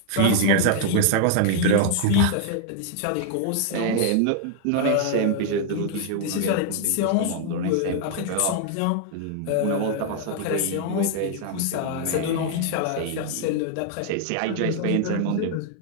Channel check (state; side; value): different; both; correlation 0.00